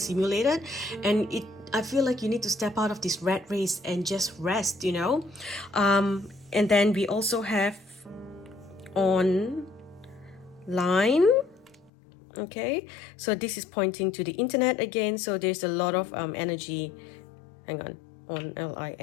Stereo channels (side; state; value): right; drops out; at 11.9 s